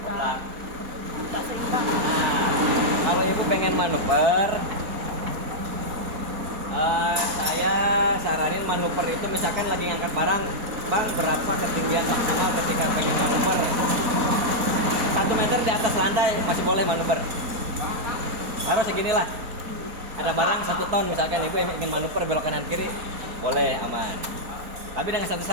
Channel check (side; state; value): left; late; 4.3 ms